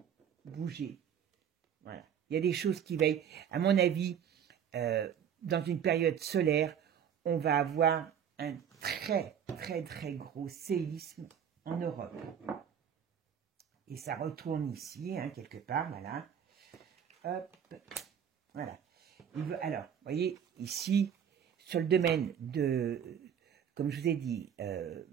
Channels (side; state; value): left; quieter; 8.4 dB